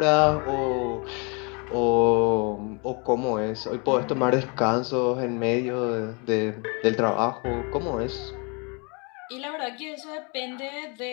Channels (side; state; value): right; quieter; 32.5 dB